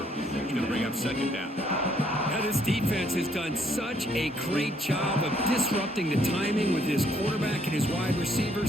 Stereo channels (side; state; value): both; normal; correlation 0.68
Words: He's going to bring up 2nd down. Now, this defense has done such a great job of disrupting the timing with his quarterback and his wide